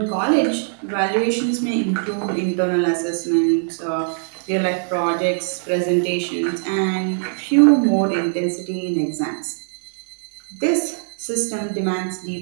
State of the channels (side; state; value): left; silent; digital silence